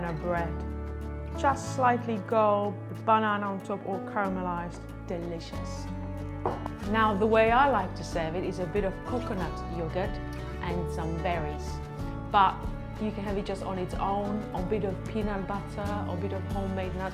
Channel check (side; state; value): both; identical; correlation 1.00